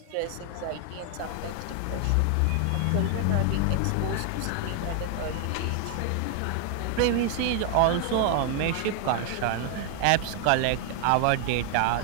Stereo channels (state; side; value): different; both; correlation 0.00